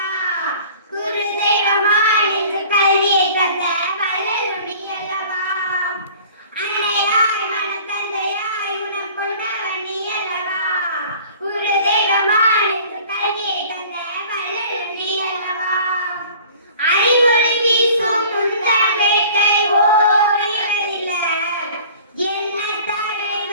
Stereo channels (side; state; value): both; inverted; correlation -0.47